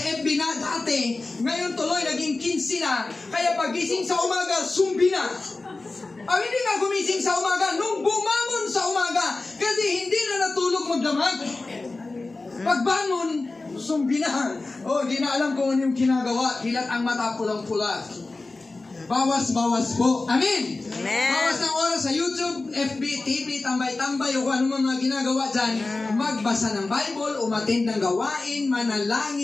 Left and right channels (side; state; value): right; quieter; 3.4 dB